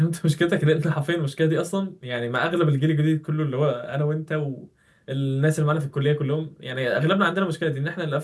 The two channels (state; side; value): identical; both; correlation 1.00